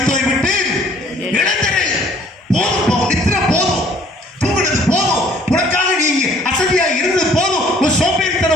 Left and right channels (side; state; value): both; normal; correlation 0.57